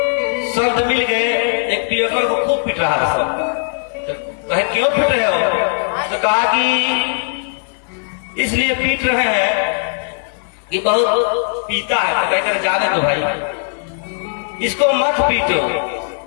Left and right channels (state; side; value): silent; right; 56 dB below the other